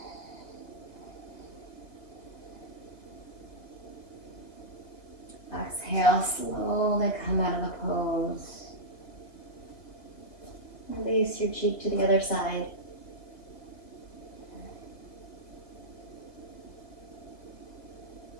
Exhale, slowly come out of the pose. Release your cheek to the other side.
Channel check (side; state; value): right; late; 1.8 ms